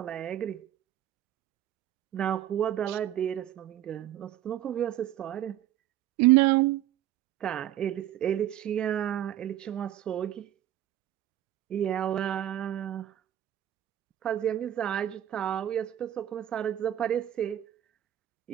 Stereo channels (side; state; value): left; quieter; 12.0 dB